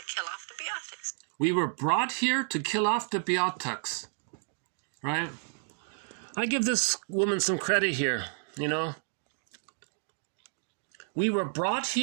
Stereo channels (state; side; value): silent; left; digital silence